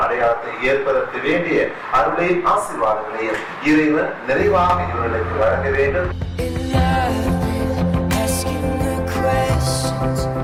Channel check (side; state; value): both; identical; correlation 1.00